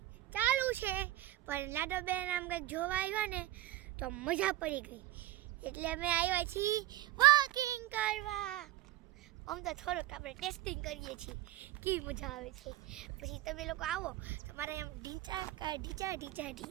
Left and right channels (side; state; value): left; quieter; 15.6 dB